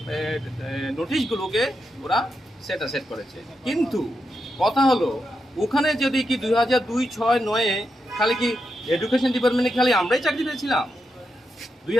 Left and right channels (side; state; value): both; normal; correlation 0.85